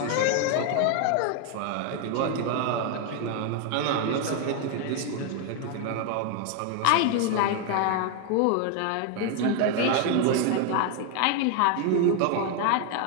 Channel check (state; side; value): different; both; correlation 0.01